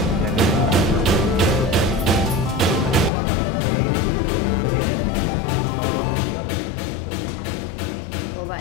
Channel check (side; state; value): right; drops out; at 3.1 s